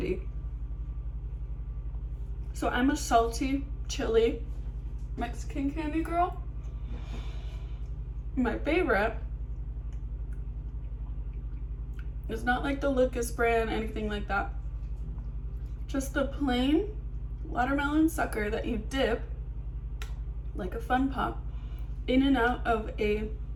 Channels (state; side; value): identical; both; correlation 1.00